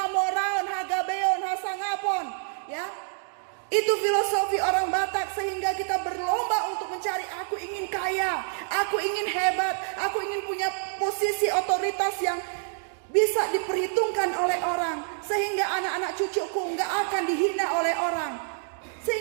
hagabeon, hasangapon, ya. Itu filosofi orang Batak sehingga kita berlomba untuk mencari aku ingin kaya, aku ingin hebat, aku ingin punya posisi otoritas yang bisa diperhitungkan oleh orang. Sehingga anak-anak cucuku nggak akan dihina oleh orang.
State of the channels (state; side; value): silent; left; digital silence